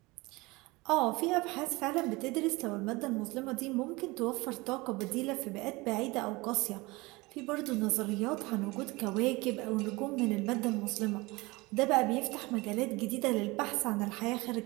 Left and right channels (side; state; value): left; quieter; 23.1 dB